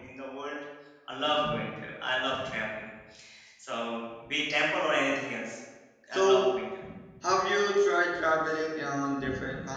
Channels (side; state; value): both; identical; correlation 1.00